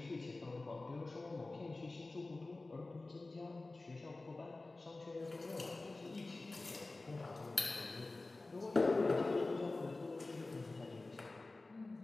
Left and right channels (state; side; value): quieter; right; 3.2 dB